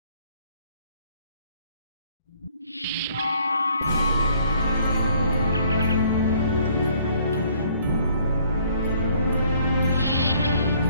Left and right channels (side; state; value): both; inverted; correlation -0.61